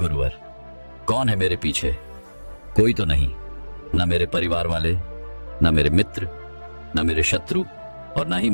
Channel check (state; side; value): inverted; both; correlation -1.00